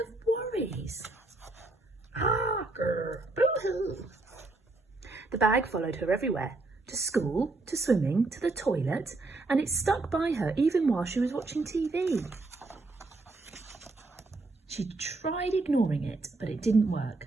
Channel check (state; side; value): quieter; left; 3.2 dB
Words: of worries. Ah, boo-hoo. The bag followed her everywhere, to school, to swimming, to the toilet, and it stuck by her even while she was watching TV. She tried ignoring it, but it didn't